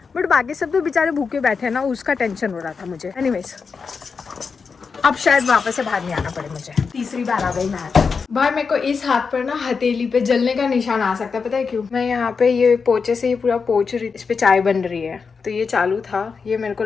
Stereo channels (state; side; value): quieter; right; 5.3 dB